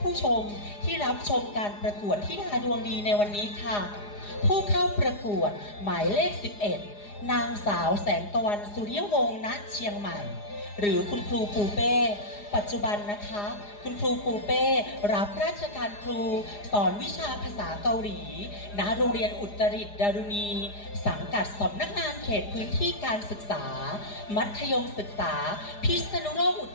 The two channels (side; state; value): right; late; 4.9 ms